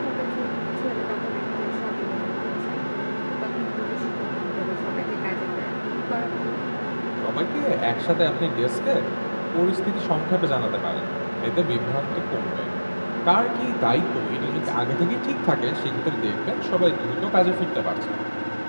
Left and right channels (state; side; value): inverted; both; correlation -1.00